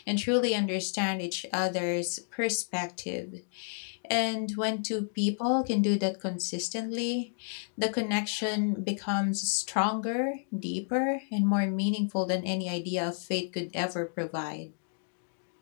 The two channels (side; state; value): right; silent; digital silence